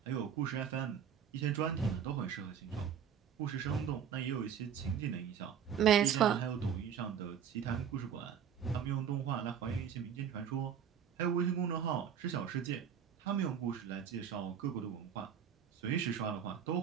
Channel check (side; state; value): left; quieter; 8.2 dB